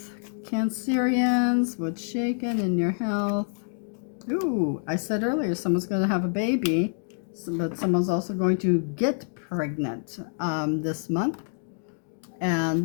Cancerians, what's shaking in your health? Ooh, I said earlier someone's going to have a baby, but someone's also going to get pregnant this month.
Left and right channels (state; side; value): silent; right; 60 dB below the other